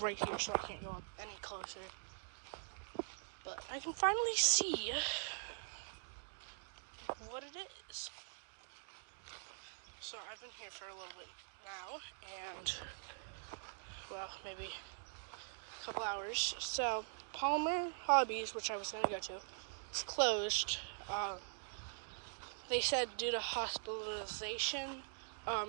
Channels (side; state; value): left; silent; digital silence